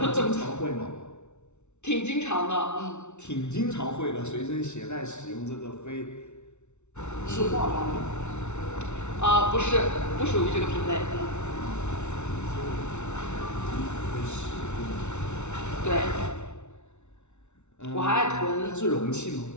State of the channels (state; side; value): late; right; 0.82 ms